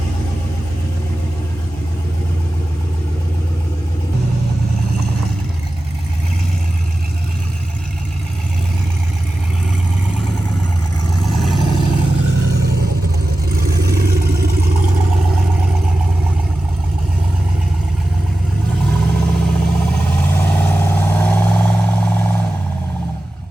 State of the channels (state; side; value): normal; both; correlation 0.94